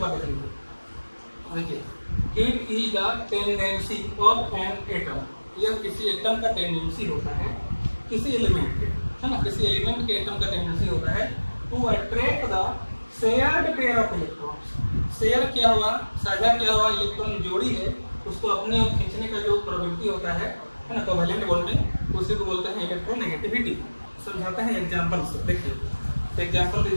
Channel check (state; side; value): inverted; both; correlation -1.00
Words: करेंगे, देखिए it is the tendency of an atom, यह किसी एटम का टेंडेंसी होता है, किसी एलिमेंट के, है ना, किसी एलिमेंट के एटम का टेंडेंसी होता है to attract the shared pair of electrons. Share क्या हुआ, साझा क्या हुआ, इलेक्ट्रॉन जोड़ी है, उसको अपने ओर खींचने का जो प्रवृत्ति होता है ना, कोवेलेंट बॉन्ड में, उसी को बोलते हैं इलेक्ट्रोनेगेटिविटी। समझाते हैं एग्जांपल से। देखिए एग्जांपल